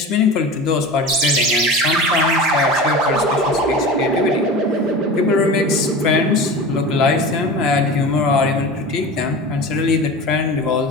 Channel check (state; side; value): normal; both; correlation 0.32